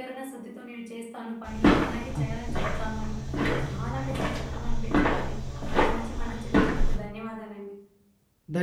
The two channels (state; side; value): identical; both; correlation 1.00